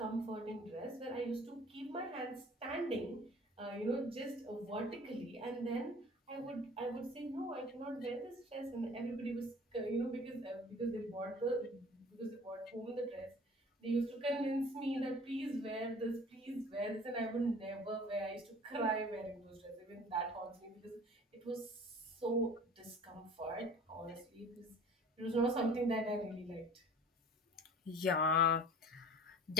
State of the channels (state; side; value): normal; both; correlation 0.46